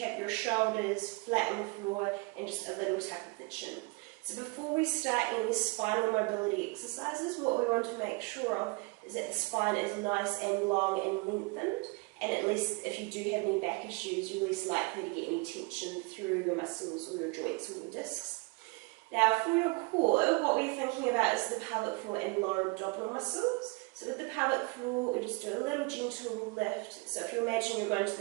have your shoulders flat on the floor and just a little tuck of the chin. So before we start any spinal mobility exercises, what we want to make sure of is that the spine is nice and long and lengthened. And at least if you do have any back issues, you're less likely to get any tension through your muscles or your joints or your discs. Now for your core, what we're thinking about is the pelvic floor and lower abdominal muscles. So with the pelvic floor, we just do a little gentle lift. So if you imagine you're going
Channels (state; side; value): quieter; left; 27.9 dB